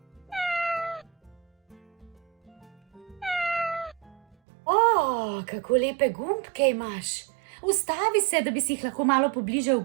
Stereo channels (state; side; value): drops out; left; at 4.4 s